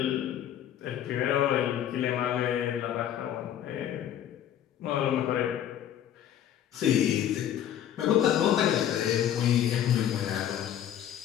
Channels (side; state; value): right; quieter; 10.6 dB